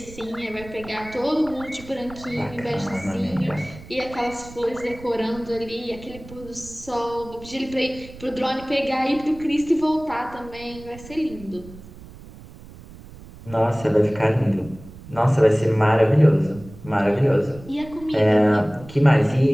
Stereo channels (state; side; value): noise; right; rumble, 18 dB below the sound